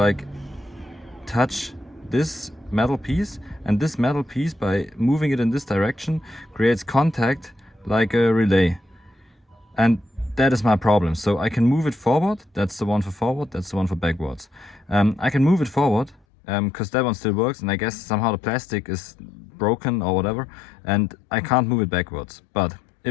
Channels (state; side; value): drops out; right; at 16.2 s